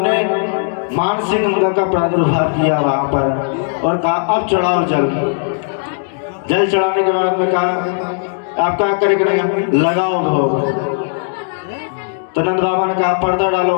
ने मानसिंह गंगा का प्रादुर्भाव किया वहां पर और कहा अब चढ़ाओ जल। जल चढ़ाने के बाद में कहा आप क्या करेंगे? लगाओ भोग। तो नंद बाबा ने कहा पर्दा डालो।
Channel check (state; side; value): silent; right; digital silence